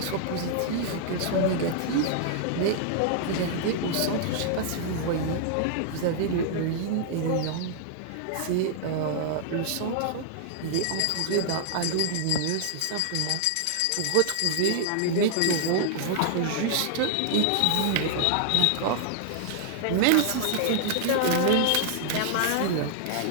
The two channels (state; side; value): different; both; correlation -0.01